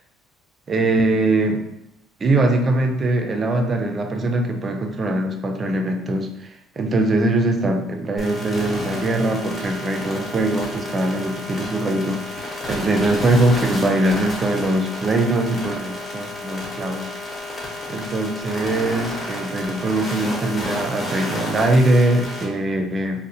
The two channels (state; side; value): normal; both; correlation 0.70